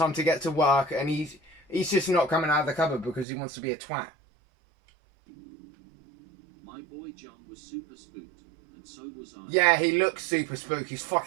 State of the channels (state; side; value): drops out; left; at 3.2 s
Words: to get to work," and he's just not coming out of the cupboard because he wants to be a twat. My boy John was super spooked, and so was I. Yeah, he looks super spooked. He's